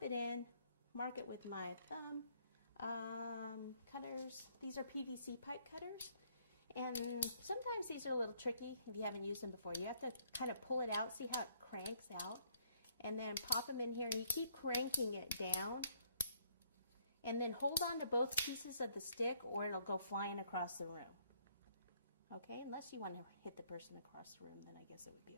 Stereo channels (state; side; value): inverted; both; correlation -0.67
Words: it in, mark it with my thumb. Cutters, these are PVC pipe cutters, and sometimes these are a little tricky if you haven't used them before. You have to kind of pull it out, see how it cranks out, and then pop them in here, and you keep cranking it down, and then hold on to both pieces of the stick or it'll go flying across the room. Okay, unless you want to hit the person across the room, then I guess it would be